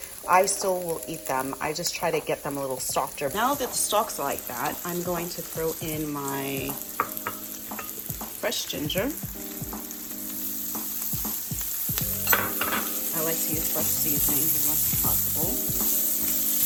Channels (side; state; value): both; identical; correlation 1.00